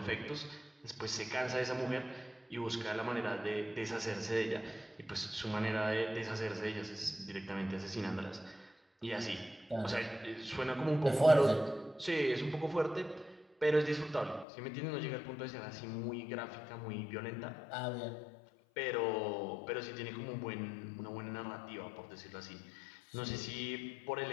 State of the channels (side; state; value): right; drops out; at 14.5 s